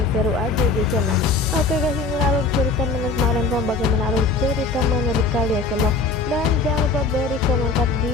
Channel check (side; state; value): right; quieter; 4.1 dB